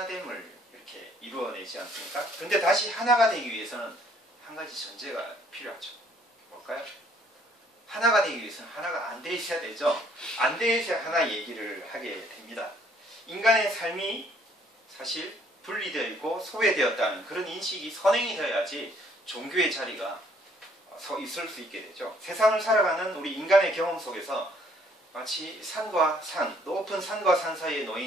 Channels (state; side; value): normal; both; correlation 0.63